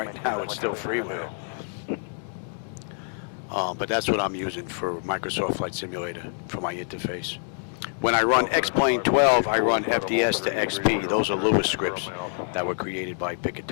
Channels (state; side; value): silent; right; 60 dB below the other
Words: now it's still freeware. But that's what I'm using for Microsoft Flight Simulator for my interface. When I run X-Plane 12, I run FDS to XP. Those are Lewis scripts that were created by